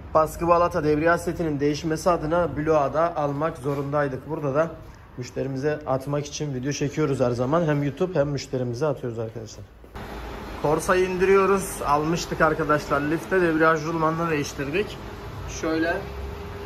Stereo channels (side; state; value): both; identical; correlation 1.00